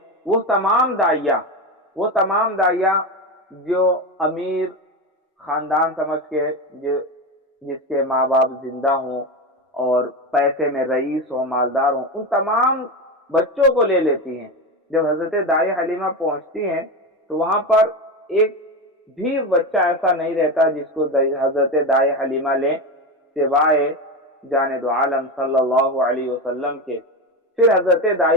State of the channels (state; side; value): normal; both; correlation 0.18